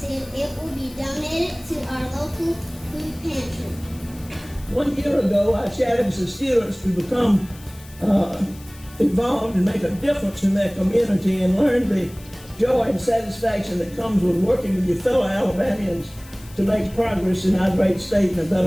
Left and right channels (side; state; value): left; noise; hiss, 22 dB below the sound